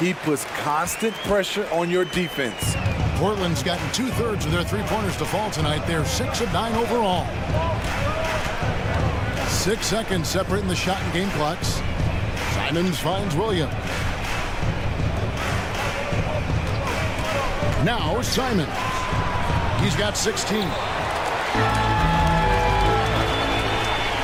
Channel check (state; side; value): identical; both; correlation 1.00